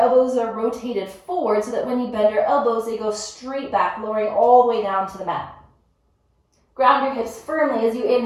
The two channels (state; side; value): identical; both; correlation 1.00